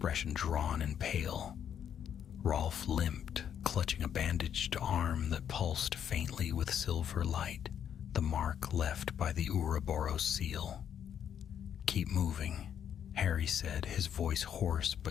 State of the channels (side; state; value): right; quieter; 8.9 dB